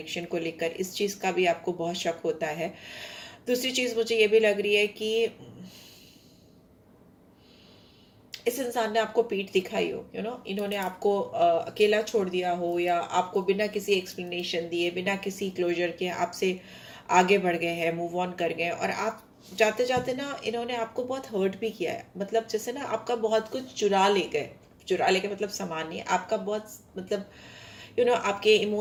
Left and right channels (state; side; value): identical; both; correlation 1.00